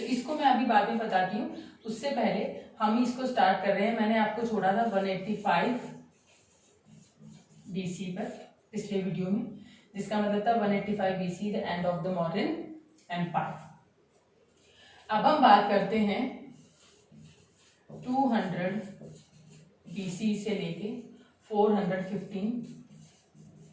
इसको मैं अभी बाद में बताती हूँ. उससे पहले हम इसको स्टार्ट कर रहे हैं. मैंने आपको छोड़ा था 185 BC पर पिछले वीडियो में, जिसका मतलब था 185 BC the end of the Mauryan empire. अब हम बात करते हैं 200 BC से लेके 415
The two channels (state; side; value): identical; both; correlation 1.00